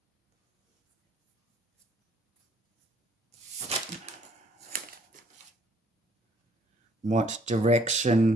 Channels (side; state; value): both; normal; correlation 0.62